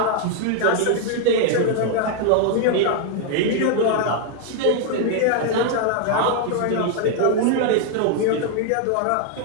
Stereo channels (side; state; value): both; different; correlation 0.01